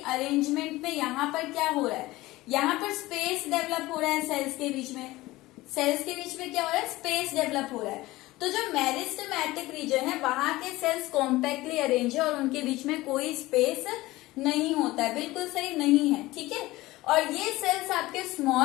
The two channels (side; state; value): right; quieter; 18.7 dB